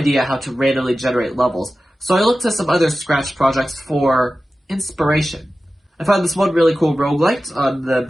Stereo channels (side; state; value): both; normal; correlation 0.95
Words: how to randomly generate levels, so I looked to some other Scratch projects for inspiration. I found this one really cool roguelite on the